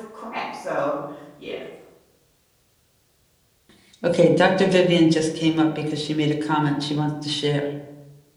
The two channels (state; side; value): identical; both; correlation 1.00